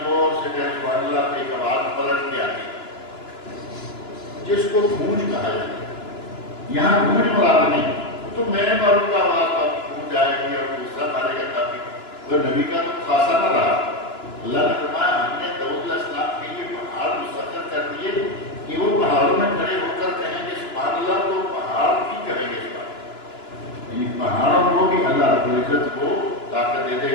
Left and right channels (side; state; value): right; late; 2.9 ms